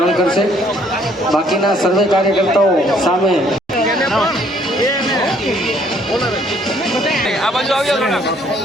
કરશે। બાકીના સર્વે કાર્યકર્તાઓ સામે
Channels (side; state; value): both; normal; correlation 0.64